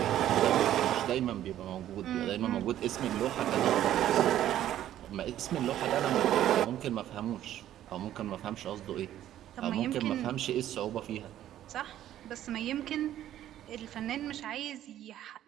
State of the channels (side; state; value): left; quieter; 12.2 dB